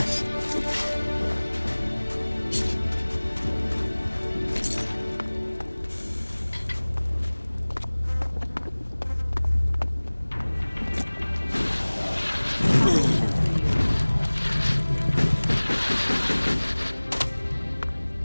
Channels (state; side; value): inverted; both; correlation -1.00